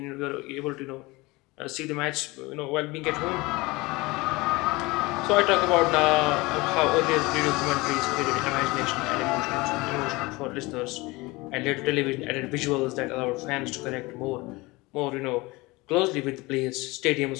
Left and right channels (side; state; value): right; quieter; 22.9 dB